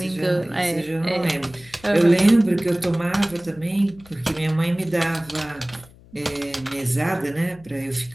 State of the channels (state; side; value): noise; left; hum, 24 dB below the sound